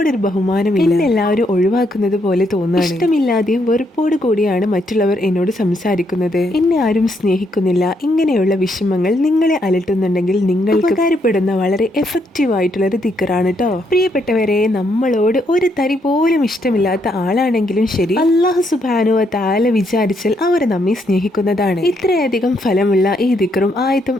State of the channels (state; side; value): normal; both; correlation 0.75